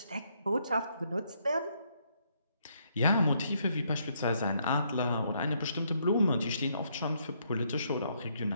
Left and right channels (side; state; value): both; inverted; correlation -0.73